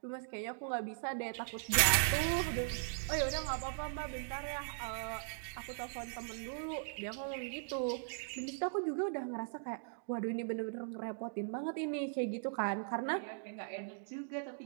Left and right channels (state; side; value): silent; left; digital silence